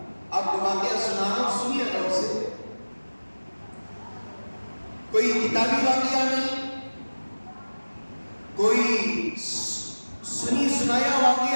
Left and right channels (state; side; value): inverted; both; correlation -1.00